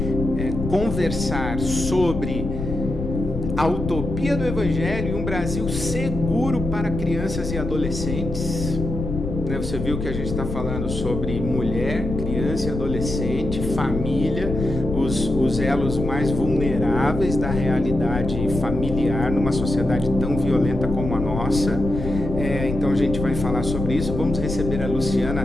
conversar sobre a utopia do Evangelho e um Brasil seguro para crianças e adolescentes. né? Você viu que a gente está falando sobre mulher, criança e adolescente, família, os elos mais vulneráveis da realidade familiar numa sociedade tão violenta como a nossa. Então a gente vai falar sobre isso. Vamos receber a Luciana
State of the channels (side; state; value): left; noise; rumble, 5 dB below the sound